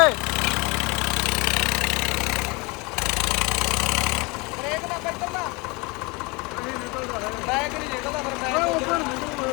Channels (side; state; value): right; quieter; 27.1 dB